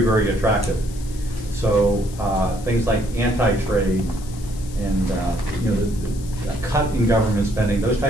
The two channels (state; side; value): noise; left; hiss, 19 dB below the sound